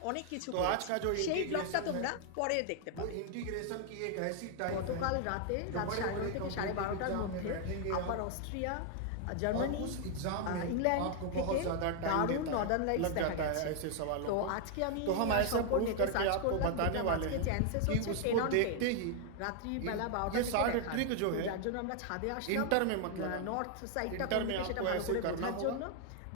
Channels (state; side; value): different; both; correlation 0.00